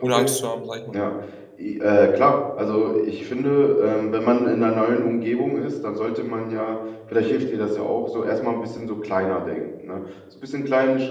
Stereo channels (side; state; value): both; identical; correlation 1.00